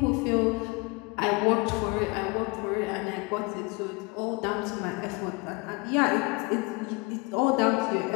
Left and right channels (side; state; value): right; quieter; 28.1 dB